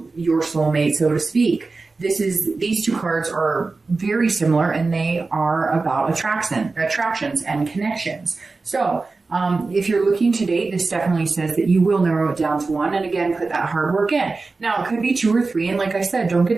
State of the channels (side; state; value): left; quieter; 3.8 dB